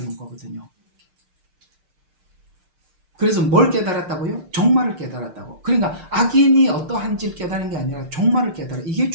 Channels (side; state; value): left; late; 6.6 ms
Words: 거거든요. 그래서 뭘 깨달았다고요? 종말을 깨달았다고. 그러니까 악인이 어떠한지를 깨달은 게 아니라 종말을 깨달아. 이게